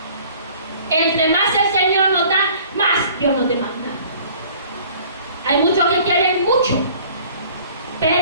Entre más el Señor nos da, más Dios nos demanda. Hay muchos que quieren mucho,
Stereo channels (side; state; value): both; inverted; correlation -0.51